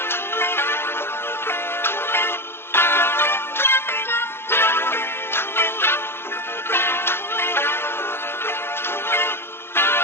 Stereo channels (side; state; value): right; late; 0.11 ms